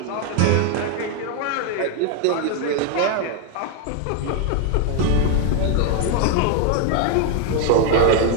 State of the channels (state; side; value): different; both; correlation 0.01